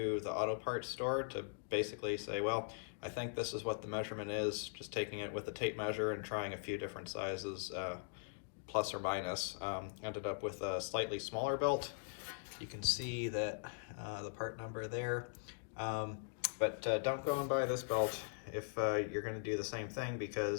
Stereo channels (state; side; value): silent; right; digital silence